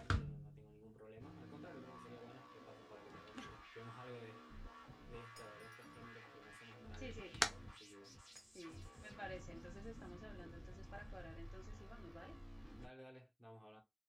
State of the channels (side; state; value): both; identical; correlation 1.00